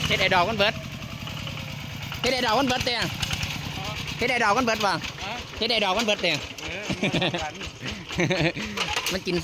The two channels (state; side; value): identical; both; correlation 1.00